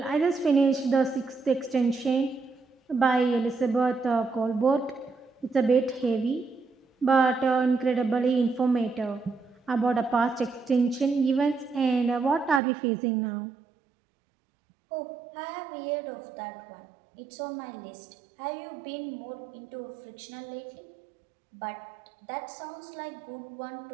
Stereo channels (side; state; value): left; drops out; at 12.6 s